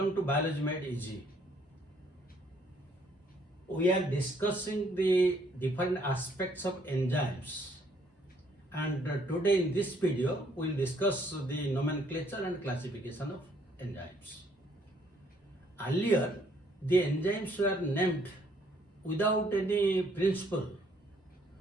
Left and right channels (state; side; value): normal; both; correlation 0.66